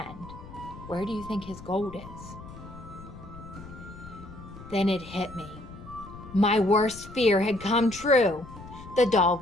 Where do you think his gold is? Then it hit me. My worst fear had come true. The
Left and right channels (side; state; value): left; noise; rumble, 15 dB below the sound